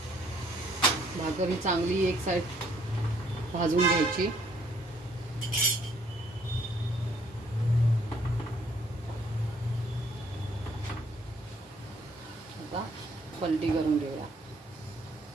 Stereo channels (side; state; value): both; normal; correlation 0.64